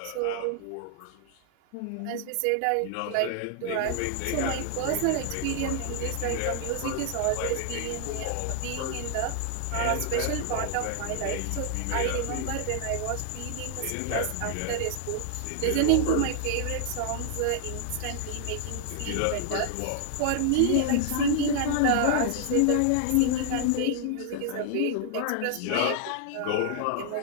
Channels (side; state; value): both; different; correlation 0.00